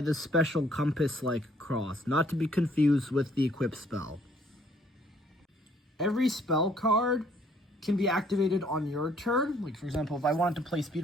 the special compass-like cross, not to be confused with the equip spell. Every spell card can be activated on your turn. Like, for example, if I wanted to play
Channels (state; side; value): normal; both; correlation 0.63